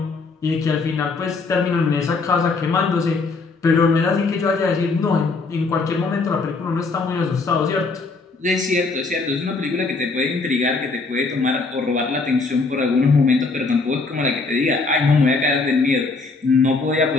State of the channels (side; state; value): right; quieter; 4.0 dB